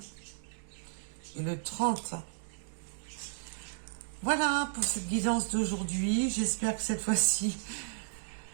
et le 30. Voilà pour cette guidance d'aujourd'hui. J'espère que cette fois-ci,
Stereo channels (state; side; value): silent; left; digital silence